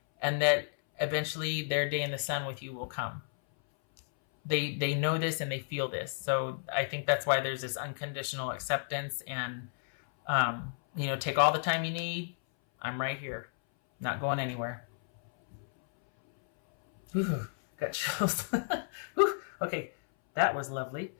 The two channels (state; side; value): silent; right; 56 dB below the other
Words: and that eventually their day in the sun with you will come. They know this and they feel this. So I think that's why there's this unconditional acceptance, and take all the time you need. I'm right here. Not going anywhere. Got chills. Okay, that was lovely.